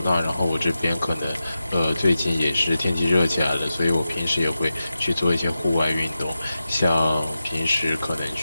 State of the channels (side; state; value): both; inverted; correlation -0.91